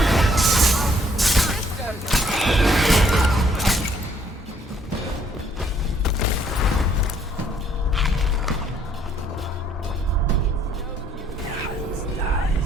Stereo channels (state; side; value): normal; both; correlation 0.65